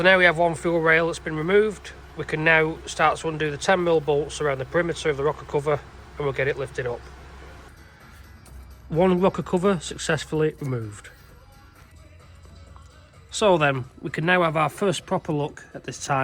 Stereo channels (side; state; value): both; identical; correlation 1.00